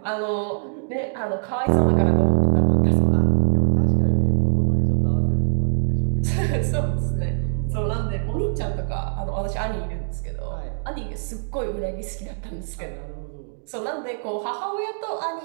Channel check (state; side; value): silent; left; digital silence